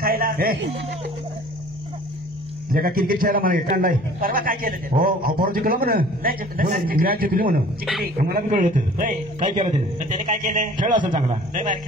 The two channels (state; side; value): normal; both; correlation 0.49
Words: खायला. हे जे का क्रिकेट खेळायला मला काढलाय. परवा काय केलं ते? हो परत जिंकलं म्हणून नाही जिंकलं. मॅच जिंकली म्हणून जिंकली. मला बी कळलं होतं. होय. काय केलं त्याने? तर त्याने काय केलं? खेळ असेल चांगला. लय बाहेर